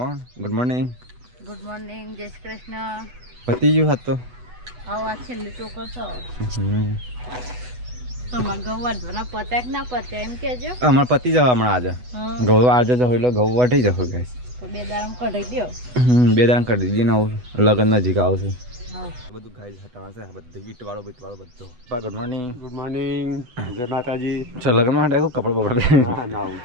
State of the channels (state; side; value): late; left; 8.1 ms